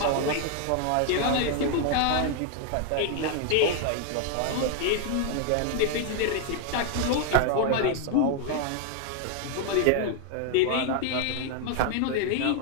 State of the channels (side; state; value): both; different; correlation 0.00